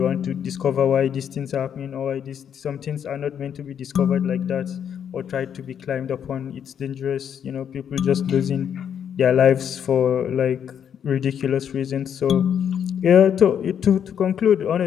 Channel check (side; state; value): right; quieter; 8.5 dB